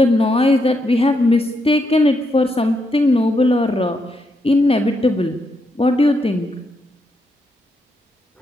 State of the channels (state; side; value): normal; both; correlation 0.80